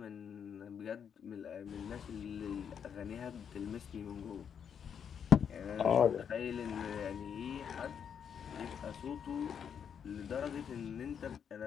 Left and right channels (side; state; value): right; quieter; 7.7 dB